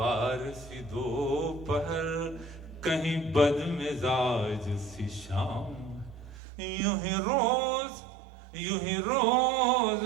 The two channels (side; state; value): left; drops out; at 6.4 s